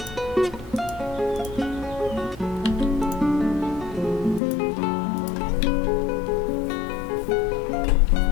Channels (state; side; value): drops out; right; at 4.4 s